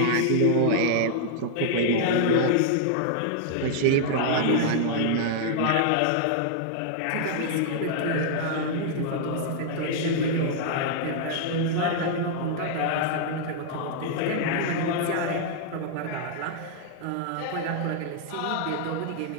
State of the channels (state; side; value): different; both; correlation -0.01